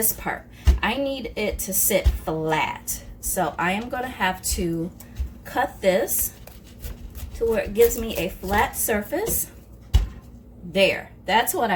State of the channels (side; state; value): both; identical; correlation 1.00